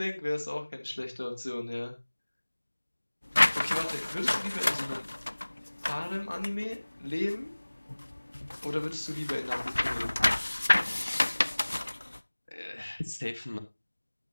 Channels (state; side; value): inverted; both; correlation -1.00